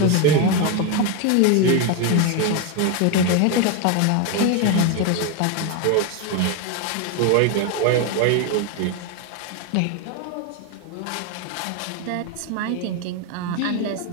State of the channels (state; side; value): different; both; correlation 0.02